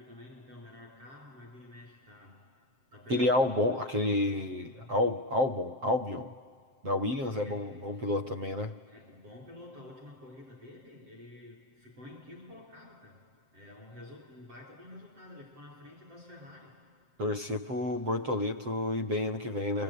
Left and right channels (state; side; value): late; left; 7.6 ms